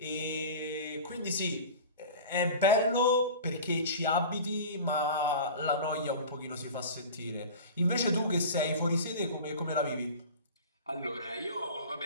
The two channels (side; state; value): both; inverted; correlation -0.35